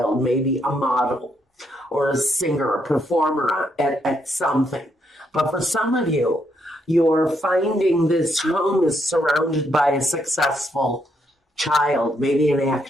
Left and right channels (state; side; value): normal; both; correlation 0.76